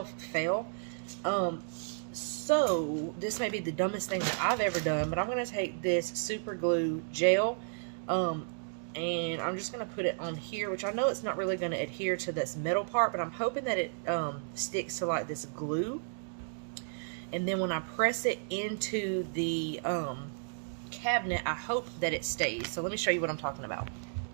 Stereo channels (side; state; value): left; silent; digital silence